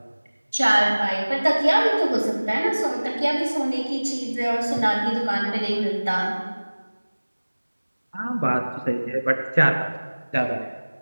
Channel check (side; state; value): both; inverted; correlation -1.00